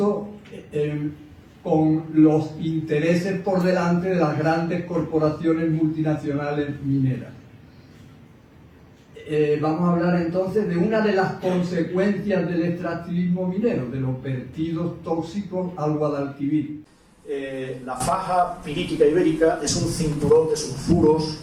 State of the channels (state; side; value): identical; both; correlation 1.00